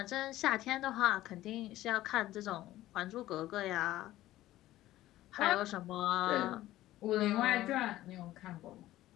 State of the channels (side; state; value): right; quieter; 15.3 dB